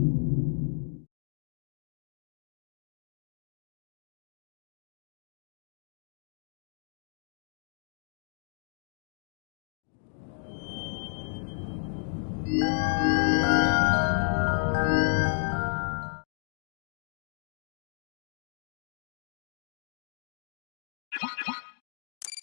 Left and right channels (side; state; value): right; silent; digital silence